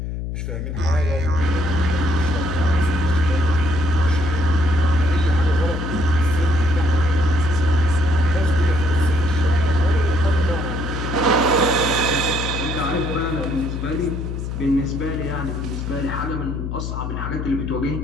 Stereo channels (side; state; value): left; noise; hum, 5 dB below the sound